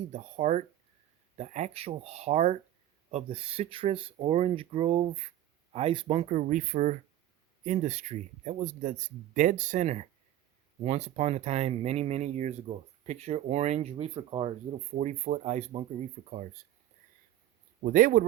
the heart, the actual heart of the citrus orange grove ice bunker reefer industry. That was the dead center once upon a time, many, many years ago. Picture orange reefer cars, little 40-foot ice bunker reefer cars. Well, they would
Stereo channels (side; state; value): left; quieter; 12.9 dB